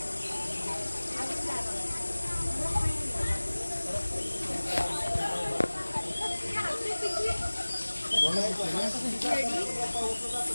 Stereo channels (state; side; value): inverted; both; correlation -1.00